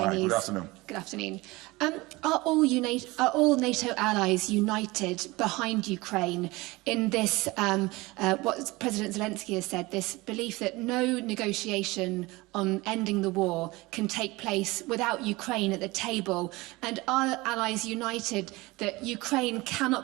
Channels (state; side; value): quieter; left; 21.9 dB